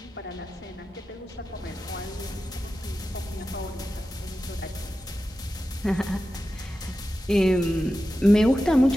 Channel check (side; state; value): both; normal; correlation 0.92